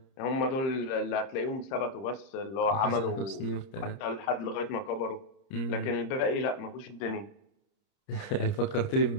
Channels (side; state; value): right; late; 30 ms